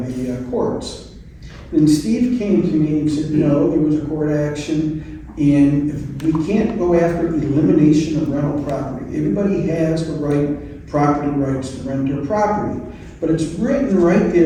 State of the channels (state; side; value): identical; both; correlation 1.00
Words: courts. Then Steve came to me and said, no, there was a court action, and we can't go after elimination of rental property. Everybody has the right, property rights to rent their property. But it's written right